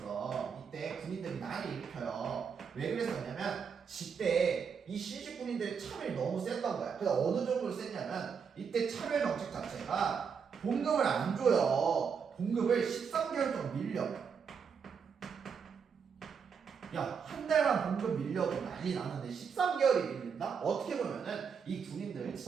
이때 군인들이 난을 일으켜요. 왜 그랬었냐면 이때 이 신식 군인들의 차별이 너무 셌던 거야. 그래서 어느 정도로 셌냐면 이때 차별 정책 자체가 봉급을 안 줘요. 봉급을 13개월 동안 밀려. 야, 한 달만 봉급 밀려도 난리 나는데 13개월이 밀린다? 어떻게 보면은 이 군인들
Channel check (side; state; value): left; quieter; 6.4 dB